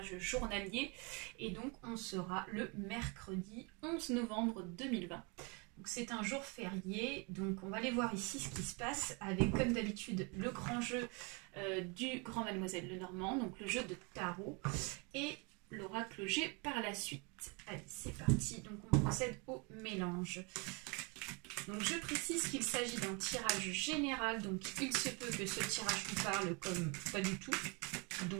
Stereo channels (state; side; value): quieter; left; 31.8 dB